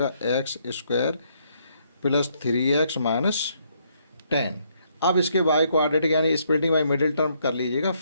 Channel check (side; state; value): both; inverted; correlation -0.71